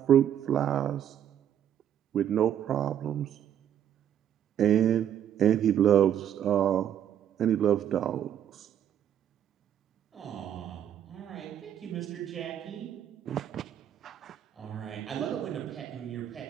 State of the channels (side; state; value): left; quieter; 10.0 dB